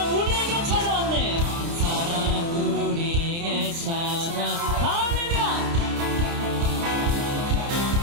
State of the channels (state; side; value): late; left; 30 ms